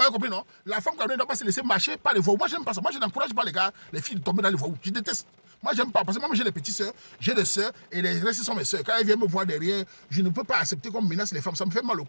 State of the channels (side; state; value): both; inverted; correlation -1.00